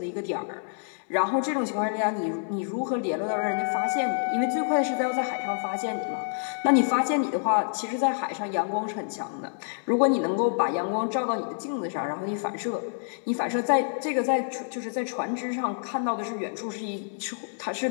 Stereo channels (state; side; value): silent; right; digital silence